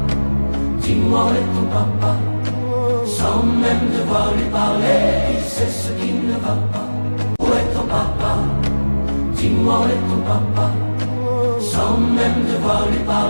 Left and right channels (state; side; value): inverted; both; correlation -1.00